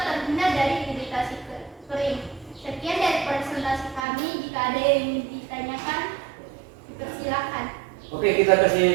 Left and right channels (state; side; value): drops out; left; at 4.0 s